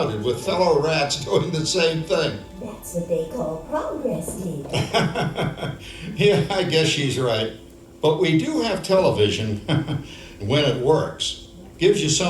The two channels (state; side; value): identical; both; correlation 1.00